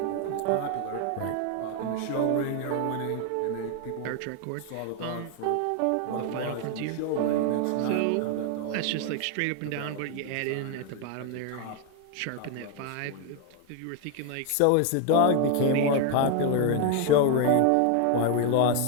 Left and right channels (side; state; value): both; different; correlation 0.01